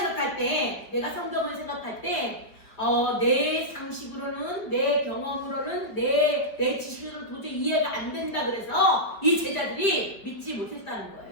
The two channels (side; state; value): right; late; 4.8 ms